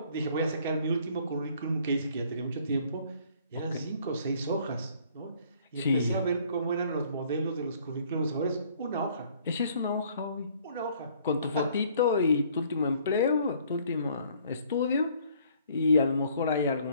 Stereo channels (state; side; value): inverted; both; correlation -0.59